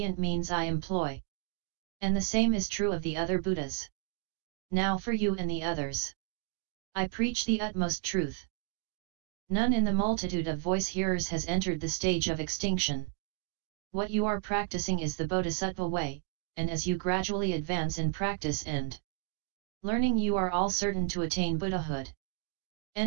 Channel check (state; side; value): silent; left; digital silence